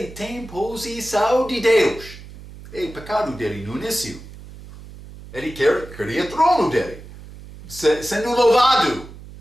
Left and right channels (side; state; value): right; noise; hum, 16 dB below the sound